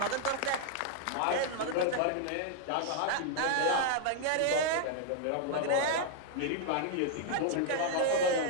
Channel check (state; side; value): different; both; correlation 0.00